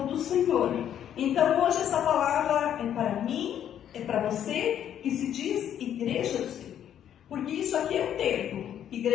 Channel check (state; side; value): quieter; right; 10.0 dB